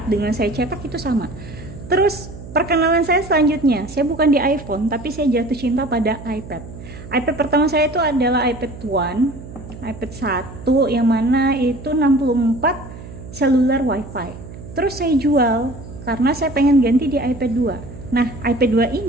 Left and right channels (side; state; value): right; noise; hum, 14 dB below the sound